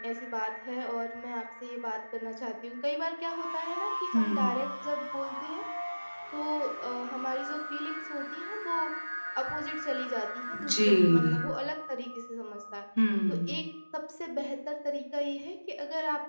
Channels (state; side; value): inverted; both; correlation -1.00